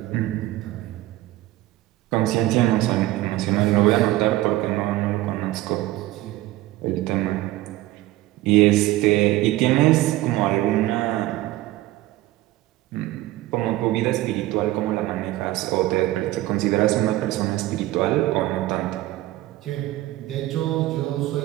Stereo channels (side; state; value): left; quieter; 16.7 dB